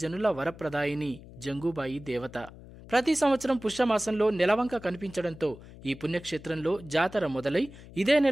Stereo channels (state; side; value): noise; left; hum, 18 dB below the sound